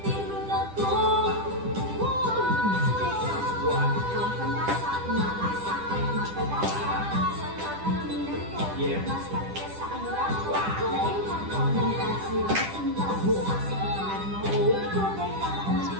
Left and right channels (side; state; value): left; late; 10 ms